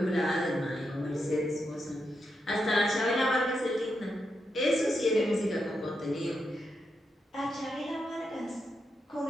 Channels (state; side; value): normal; both; correlation 0.84